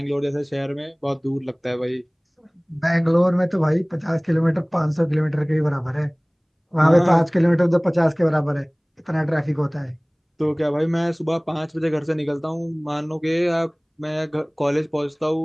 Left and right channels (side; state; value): both; identical; correlation 1.00